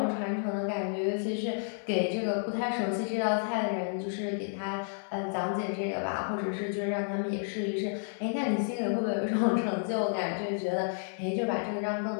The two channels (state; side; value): silent; right; 57 dB below the other